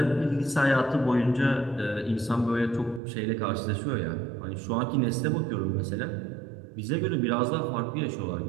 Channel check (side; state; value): left; drops out; at 3.0 s